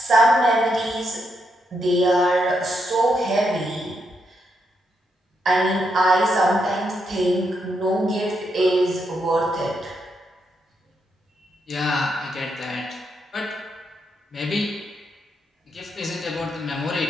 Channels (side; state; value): both; normal; correlation 0.80